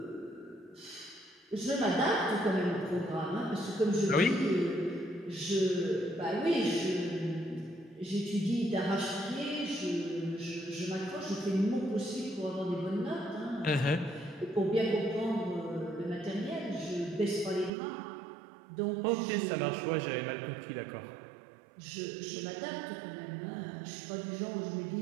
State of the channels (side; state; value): left; drops out; at 17.7 s